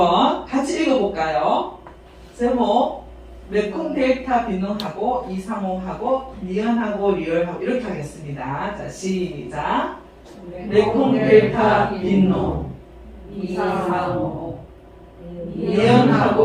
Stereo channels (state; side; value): identical; both; correlation 1.00